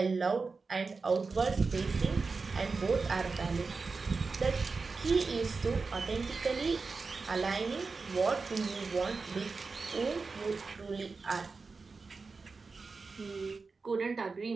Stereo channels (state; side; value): quieter; left; 4.3 dB